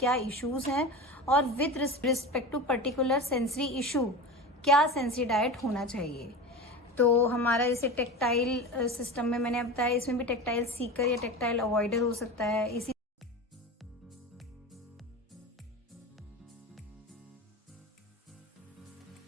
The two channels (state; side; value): normal; both; correlation 0.28